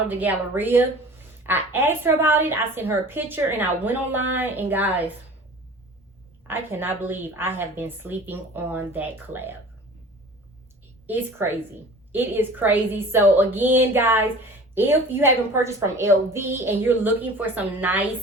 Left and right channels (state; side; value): normal; both; correlation 0.43